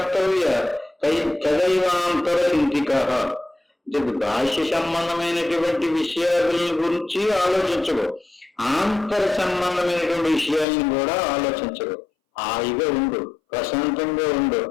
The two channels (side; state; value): right; drops out; at 10.7 s